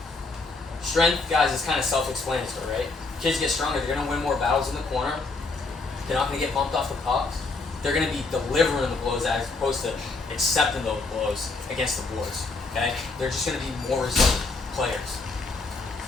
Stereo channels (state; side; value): quieter; right; 3.7 dB